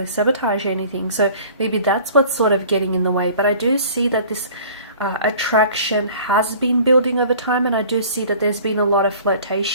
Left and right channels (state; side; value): inverted; both; correlation -0.47